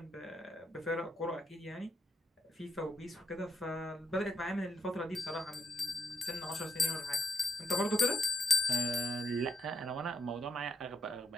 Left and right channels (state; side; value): normal; both; correlation 0.77